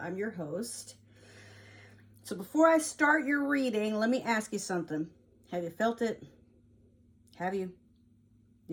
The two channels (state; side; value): identical; both; correlation 1.00